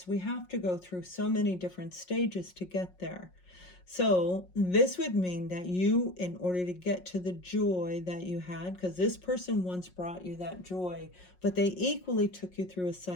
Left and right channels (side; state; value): right; late; 5.5 ms